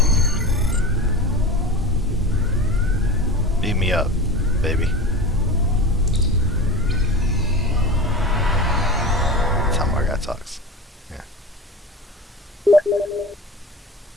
me up, baby. That's how my guy talks. Yeah.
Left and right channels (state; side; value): normal; both; correlation 0.31